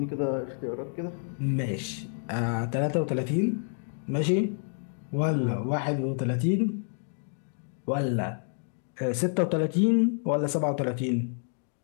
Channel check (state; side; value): silent; right; 59 dB below the other